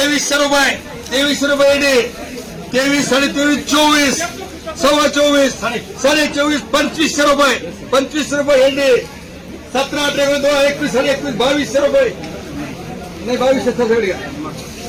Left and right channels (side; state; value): both; identical; correlation 1.00